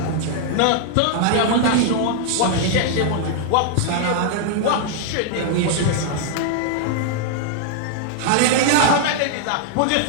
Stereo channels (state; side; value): different; both; correlation -0.01